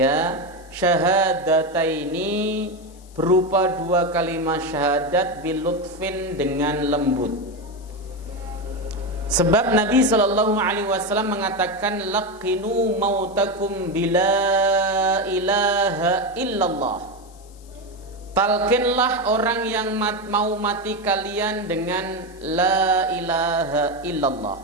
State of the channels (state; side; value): noise; left; hiss, 26 dB below the sound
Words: syahadataini, berupa dua kalimat syahadat bilutfin, dengan lembut. Sebab Nabi sallallahu alaihi wasallam mengatakan laqinu mautakum bila ilaha illallah. Talqinlah orang yang mau mati kalian dengan la ilaha illallah.